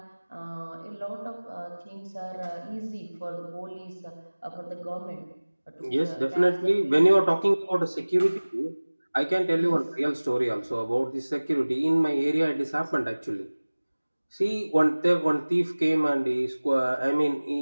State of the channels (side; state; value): both; inverted; correlation -1.00